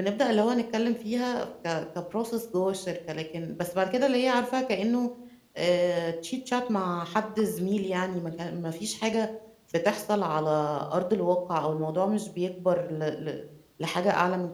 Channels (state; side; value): identical; both; correlation 1.00